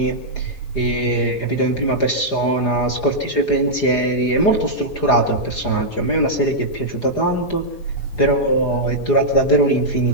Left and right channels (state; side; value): late; right; 4.9 ms